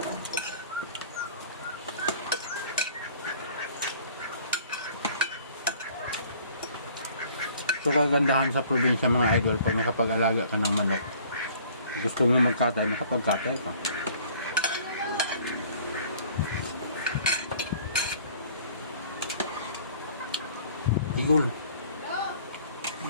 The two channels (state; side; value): inverted; both; correlation -0.53